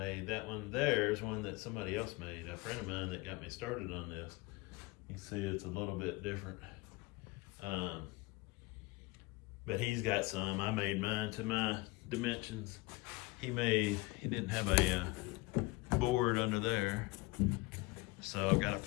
That one there is one that somebody else made, a friend of mine that got me started on this. You can see it's a little bit different. But he's got some. I made mine to my dimensions. He didn't have a board under there, so I've got to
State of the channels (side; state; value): right; quieter; 22.7 dB